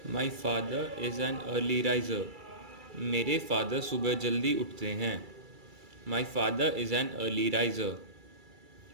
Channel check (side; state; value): left; late; 2.3 ms